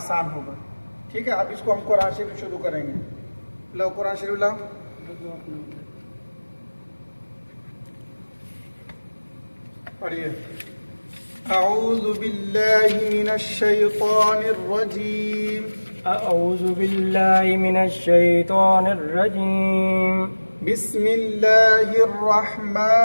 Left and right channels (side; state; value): both; inverted; correlation -1.00